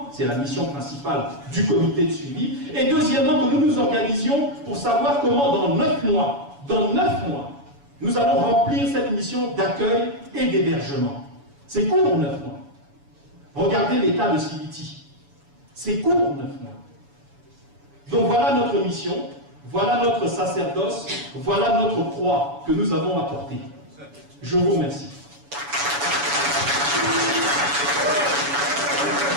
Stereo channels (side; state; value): left; late; 7.0 ms